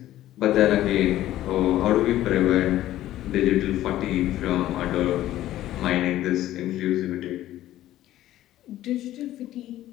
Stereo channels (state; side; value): quieter; right; 13.9 dB